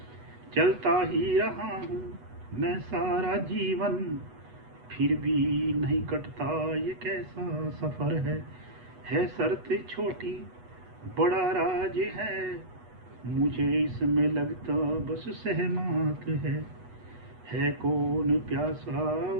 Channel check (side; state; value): left; late; 8.1 ms